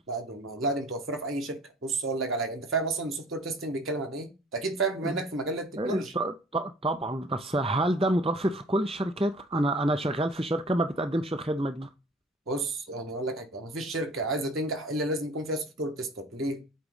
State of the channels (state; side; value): normal; both; correlation 0.49